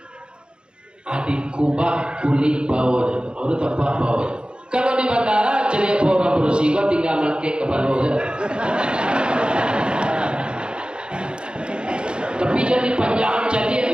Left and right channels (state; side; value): late; left; 0.052 ms